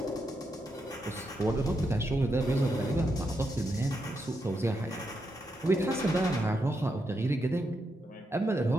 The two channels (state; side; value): normal; both; correlation 0.83